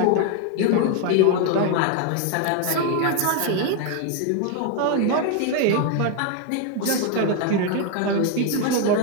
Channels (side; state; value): both; different; correlation 0.01